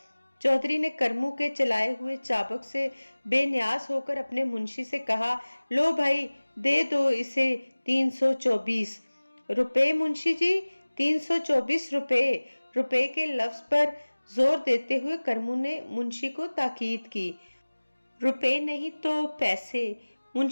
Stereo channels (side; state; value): both; inverted; correlation -1.00